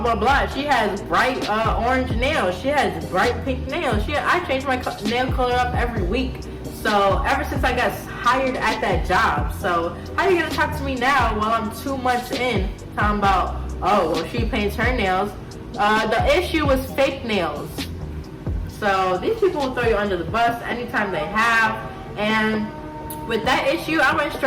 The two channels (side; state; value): both; identical; correlation 1.00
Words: blah, blah. She has bright orange nails. She has bright pink nails. I change my nail color up every week. So ever since I got hired at that job. So how are you going to talk to me now while I'm 2 months in talking about, oh, well, she paints her nails. The issue was fake nails. So these people will throw you under the bus anytime they have. And with that issue, I went